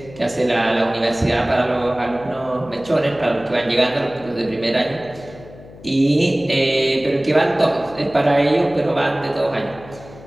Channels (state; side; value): noise; left; hum, 19 dB below the sound